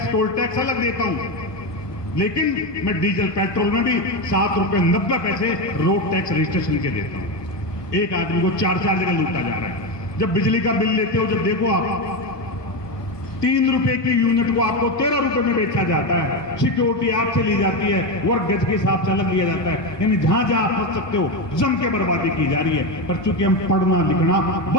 टोल टैक्स अलग देता हूं। लेकिन मैं डीजल पेट्रोल में भी 7 रुपए 90 पैसे रोड टैक्स रजिस्ट्रेशन के देता हूं। एक आदमी को 4 जगह लूटा जा रहा है। जब बिजली का बिल लेते हो, जब देखो आप ₹3 की यूनिट को आपको 13 रुपए में बेचा जाता है। सिक्योरिटी आपसे ली जाती है, वर्ग गज के हिसाब से अलग लिया जाता है। यानी जहां जहां आप फंस सकते हो जम के बर्बादी की जा रही है। पर चूंकि हम पढ़ना लिखना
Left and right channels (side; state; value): right; late; 1.2 ms